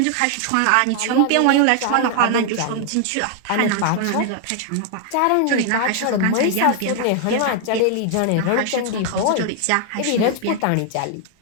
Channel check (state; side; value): different; both; correlation 0.00